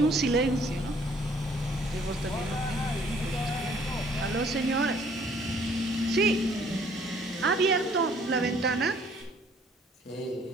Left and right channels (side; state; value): both; normal; correlation 0.60